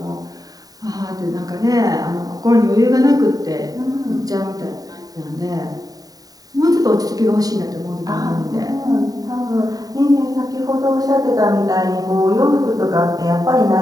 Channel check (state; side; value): late; left; 0.18 ms